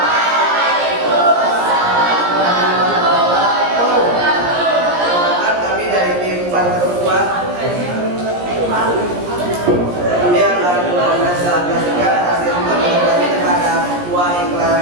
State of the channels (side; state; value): left; late; 17 ms